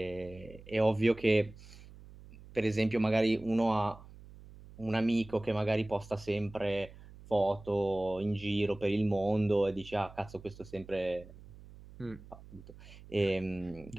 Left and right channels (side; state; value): right; noise; hum, 19 dB below the sound